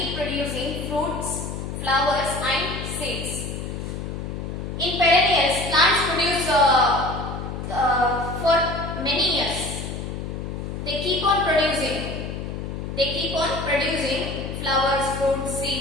producing fruits, flowers and seeds. In perennials, plants produce for many years. They keep on producing. They keep on producing flowers, fruits,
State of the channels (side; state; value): left; noise; hum, 6 dB below the sound